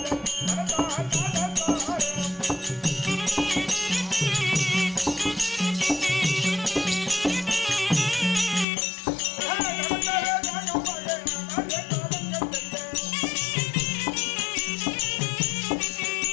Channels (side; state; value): right; drops out; at 8.7 s